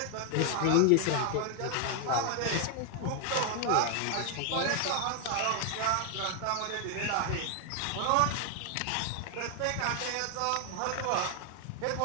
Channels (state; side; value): different; both; correlation 0.00